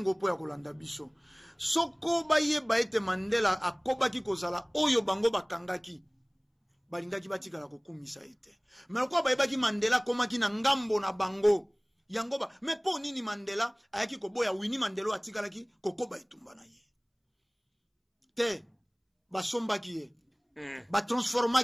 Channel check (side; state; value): both; identical; correlation 1.00